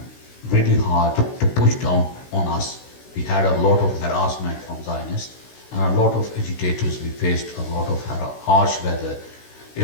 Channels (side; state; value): right; late; 16 ms